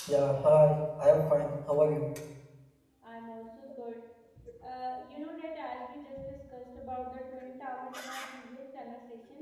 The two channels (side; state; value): both; identical; correlation 1.00